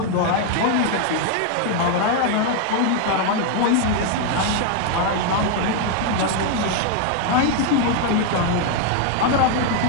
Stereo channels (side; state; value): both; different; correlation 0.01